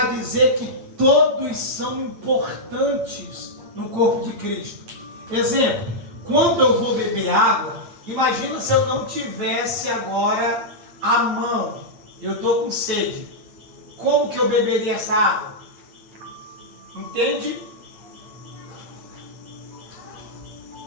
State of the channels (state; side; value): late; left; 8.8 ms